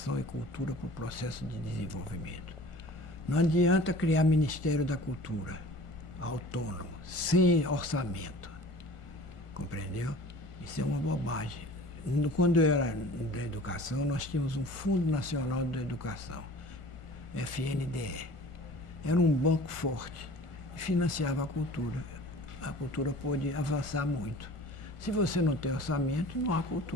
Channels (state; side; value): late; right; 1.5 ms